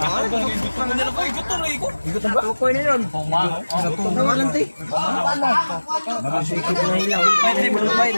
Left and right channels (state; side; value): inverted; both; correlation -1.00